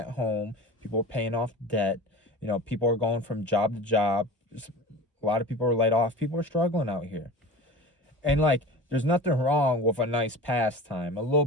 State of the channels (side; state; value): both; normal; correlation 0.35